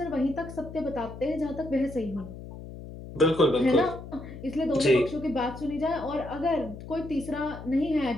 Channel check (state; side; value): noise; left; hum, 13 dB below the sound